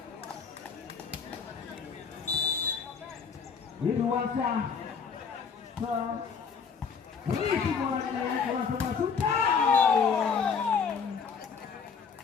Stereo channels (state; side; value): quieter; right; 6.0 dB